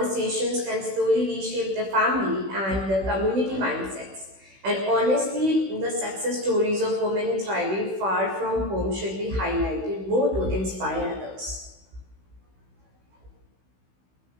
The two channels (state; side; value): late; left; 16 ms